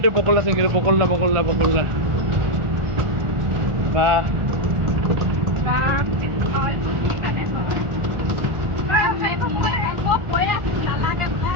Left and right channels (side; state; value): left; late; 1.4 ms